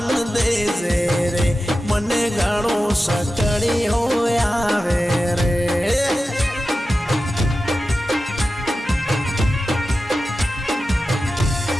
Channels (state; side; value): normal; both; correlation 0.93